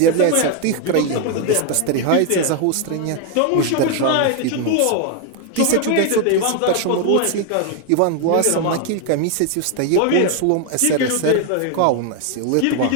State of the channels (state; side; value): different; both; correlation 0.01